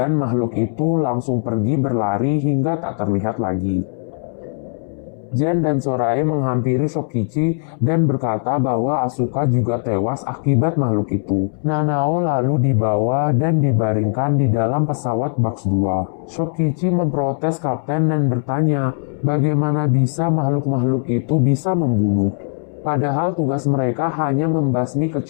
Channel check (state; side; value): silent; right; 65 dB below the other